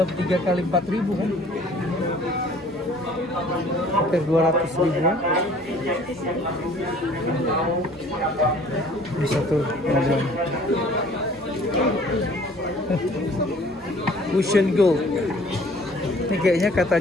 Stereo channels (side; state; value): both; normal; correlation 0.53